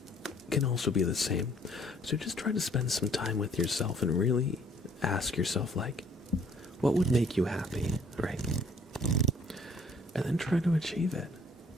can also be the same. So just try to spend some time with yourself and really ask yourself, like, what would make you happy, right? And then try to achieve it.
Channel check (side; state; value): both; normal; correlation 0.60